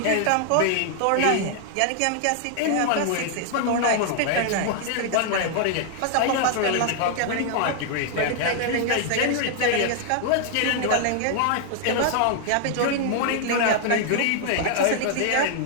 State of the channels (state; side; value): different; both; correlation 0.00